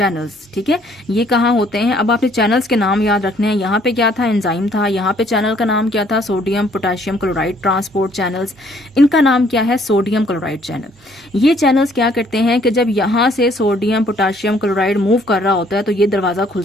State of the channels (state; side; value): normal; both; correlation 0.63